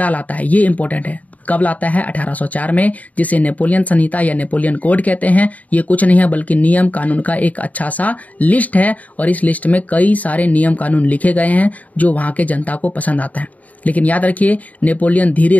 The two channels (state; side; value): late; right; 0.072 ms